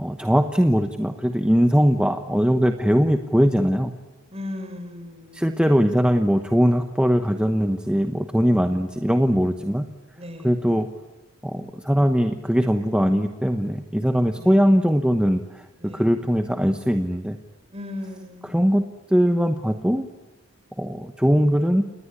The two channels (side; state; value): both; normal; correlation 0.98